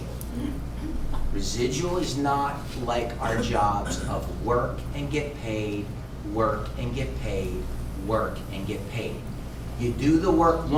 Residual is not like our jobs of work and get paid, work and get paid, work and get paid. You do the work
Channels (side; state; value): both; identical; correlation 1.00